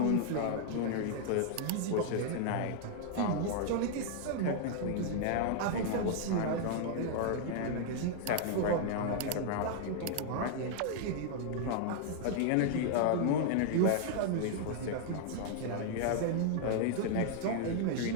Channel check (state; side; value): different; both; correlation -0.01